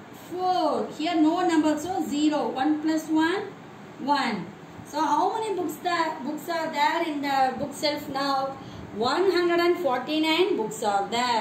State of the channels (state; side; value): identical; both; correlation 1.00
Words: 4. Here no number, so 0. 1 plus 1, 1. So how many books are there in the bookshelf now? 149 books are